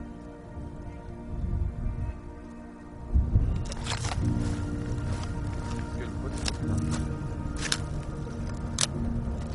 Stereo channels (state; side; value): identical; both; correlation 1.00